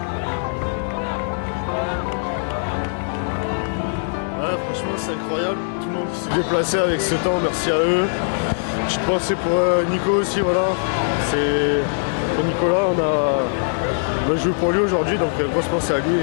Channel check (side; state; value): right; silent; digital silence